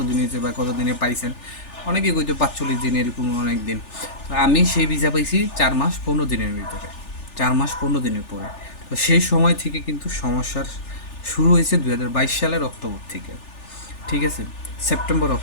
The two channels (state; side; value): late; right; 3.4 ms